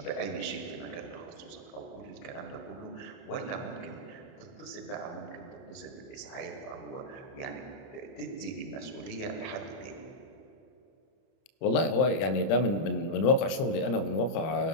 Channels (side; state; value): right; late; 31 ms